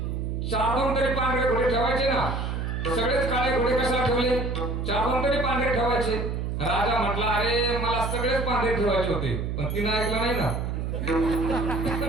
4-2 तरी पांढरे घोडे ठेवायचे ना, सगळेच काळे घोडे कशाला ठेवले? 4-2 तरी पांढरे ठेवायचे. राजा म्हटला, अरे मला सगळेच पांढरे ठेवायचे होते, पण तिनं ऐकलं नाही ना.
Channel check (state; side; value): noise; right; hum, 2 dB below the sound